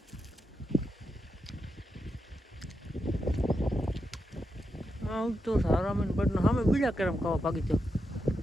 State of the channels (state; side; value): normal; both; correlation 0.86